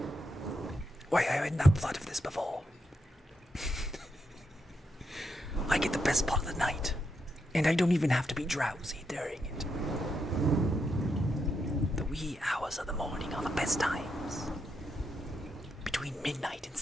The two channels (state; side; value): normal; both; correlation 0.82